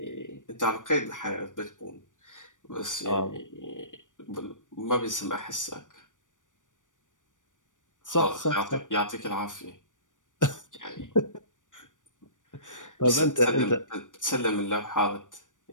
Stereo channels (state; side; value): late; right; 0.87 ms